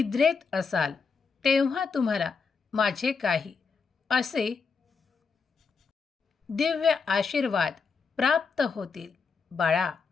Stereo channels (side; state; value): right; quieter; 5.2 dB